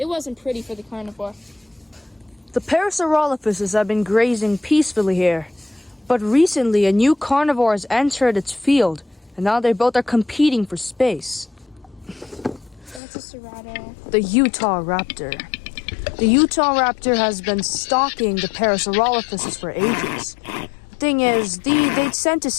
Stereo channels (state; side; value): drops out; right; at 13.0 s